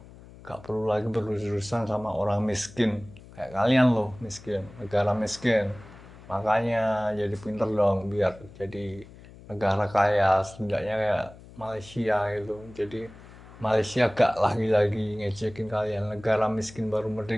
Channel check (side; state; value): left; noise; hum, 20 dB below the sound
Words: gak perlu lagi berurusan sama orang miskin. Kayak kalian loh, miskin, negara miskin. Makanya jadi pinter dong biar jadi negara kaya, setidaknya kayak Malaysia gitu. Jadi Malaysia gak lagi-lagi ngecekin kalian, negara miskin baru